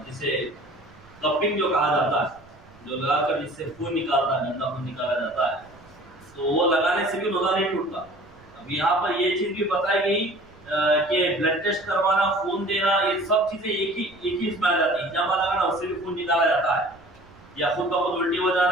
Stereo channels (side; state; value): right; noise; rumble, 26 dB below the sound